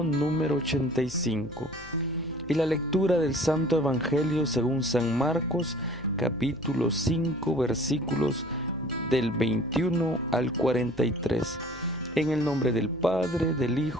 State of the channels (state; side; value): noise; left; hum, 20 dB below the sound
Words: número 85. Y la lectura del Santo Evangelio según San Marcos, capítulo 5, versículos del 21 al 43. En el nombre del Padre, del